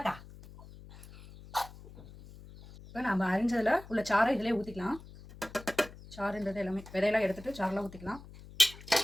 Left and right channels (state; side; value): noise; left; hum, 18 dB below the sound